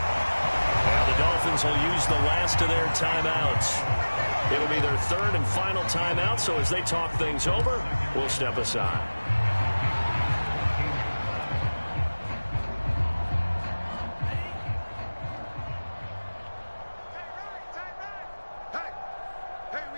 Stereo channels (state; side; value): inverted; both; correlation -1.00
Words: Now the Dolphins will use the last of their timeouts. It'll be their third and final timeout, so as they talk things over, we'll step aside.